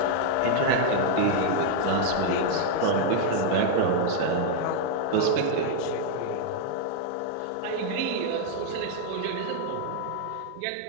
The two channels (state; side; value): different; both; correlation 0.00